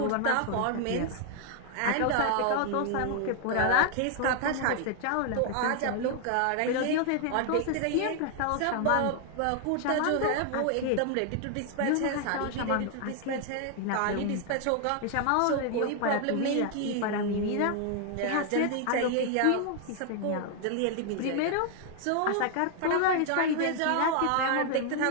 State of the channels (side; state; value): both; different; correlation 0.00